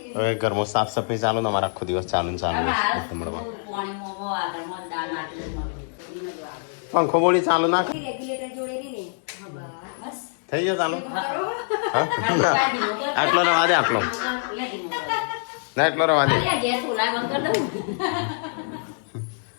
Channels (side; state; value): right; silent; digital silence